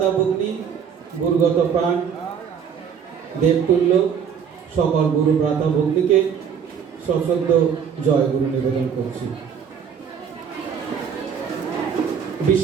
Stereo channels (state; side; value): quieter; left; 7.4 dB